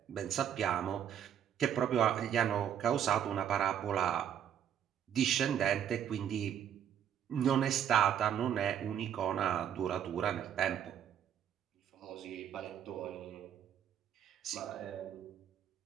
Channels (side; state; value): left; quieter; 9.4 dB